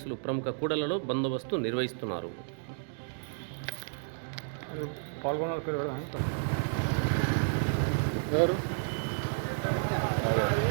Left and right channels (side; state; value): left; silent; digital silence